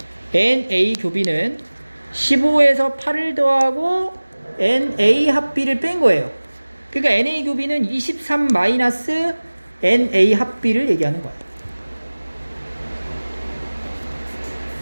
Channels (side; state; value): both; inverted; correlation -1.00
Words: NA 교비는 15에서 8을 더하고 NA 합 B를 뺀 거예요. 그러니까 NA 교비는 23 마이너스 NA 합 B를 얘기하는 거야.